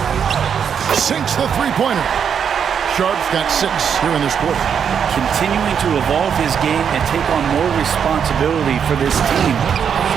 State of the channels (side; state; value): left; quieter; 7.5 dB